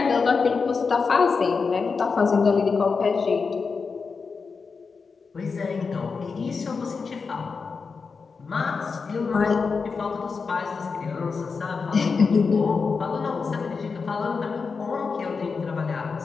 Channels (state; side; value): quieter; right; 5.0 dB